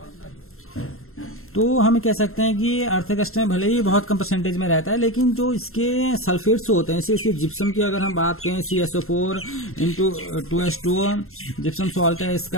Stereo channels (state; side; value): late; right; 0.62 ms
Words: तो हम कह सकते हैं कि अर्थ क्रस्ट में भले ही बहुत कम परसेंटेज में रहता है, लेकिन जो इसके सल्फेट्स होते हैं, इसके जिप्सम की अगर हम बात करें, CSO4 into 2H2O gypsum salt है